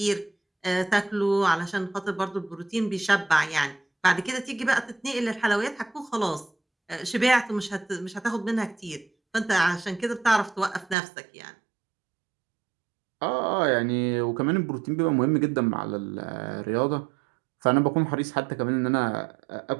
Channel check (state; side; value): drops out; left; at 11.0 s